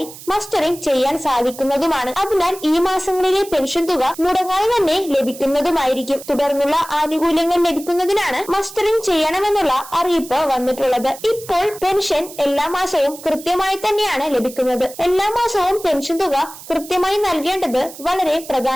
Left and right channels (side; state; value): right; noise; hiss, 16 dB below the sound